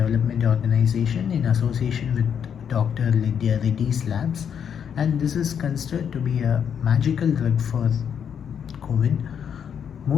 Organization in association with Dr. Lydia Reddy's labs, and this is considered to be a magical drug for COVID,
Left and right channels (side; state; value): right; quieter; 7.9 dB